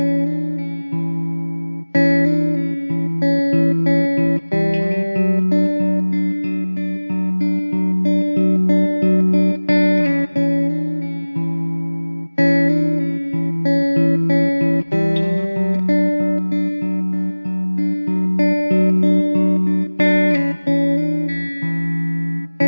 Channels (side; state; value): both; inverted; correlation -1.00